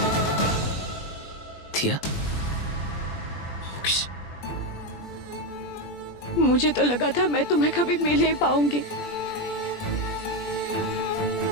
दिया मोक्ष, मुझे तो लगा था मैं तुम्हें कभी मिल नहीं पाऊंगी।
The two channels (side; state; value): right; late; 20 ms